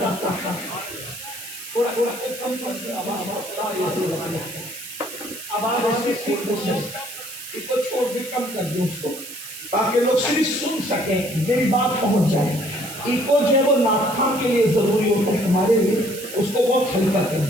تھا. تھوڑا کم کر آواز ایسے اس کو چھوڑ کے کم کر دیں اس کو تاکہ لوگ صرف سن سکیں میری بات پہنچ جائے. ایکو جو ہے وہ ناخوان کے لیے ضروری ہوتا ہے ہمارے لیے, اس کو بہت ہلکا کر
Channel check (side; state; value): right; noise; hiss, 11 dB below the sound